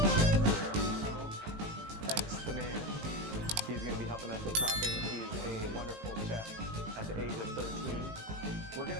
guest here. Hello. X the man. He's going to be helping us with chopping. He's a wonderful chef at the age of 13. We're going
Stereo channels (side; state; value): left; late; 19 ms